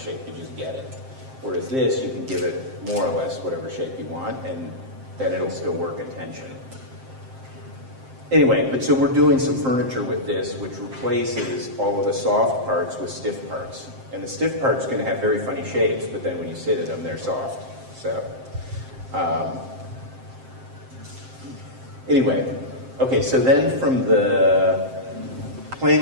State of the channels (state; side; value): late; left; 7.6 ms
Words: you just get it. Whereas this, you can give it more or less whatever shape you want, and then it'll still work in tension. Anyway, but so we're doing some furniture with this, which replaces all of the soft parts with stiff parts. And the stiff parts are going to have very funny shapes, but then when you sit in them, they're soft. So, anyway, okay, so then from the playing